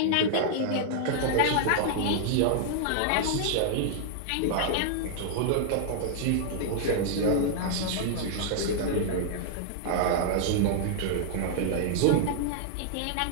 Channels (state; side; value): different; both; correlation -0.01